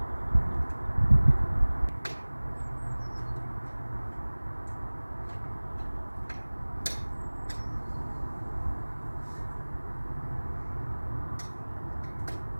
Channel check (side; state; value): both; inverted; correlation -1.00